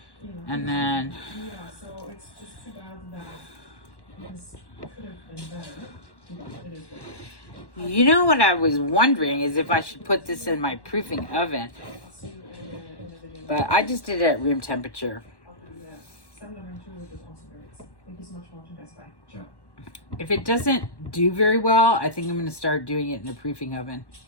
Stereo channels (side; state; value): right; late; 1.1 ms